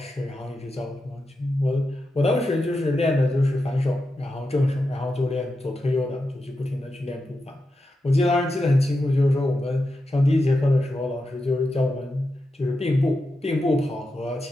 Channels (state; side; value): normal; both; correlation 0.89